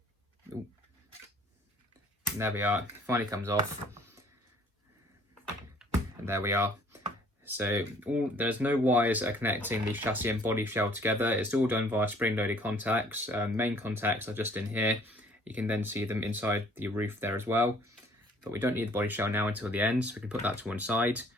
Ooh. And there we are. It finally comes off. And there we are. So there's no wires that are connecting the chassis and body shell together. It's all done via spring-loaded contacts. Main contacts are just in here. You can then see them inside the roof there as well. But we don't need the body shell now until the end, so we can put that to one side.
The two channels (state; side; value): normal; both; correlation 0.57